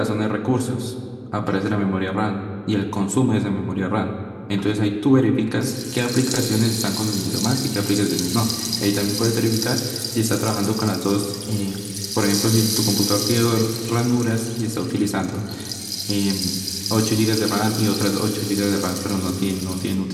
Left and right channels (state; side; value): identical; both; correlation 1.00